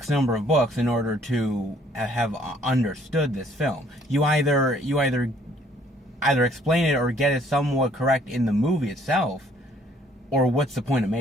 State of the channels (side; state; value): both; normal; correlation 0.62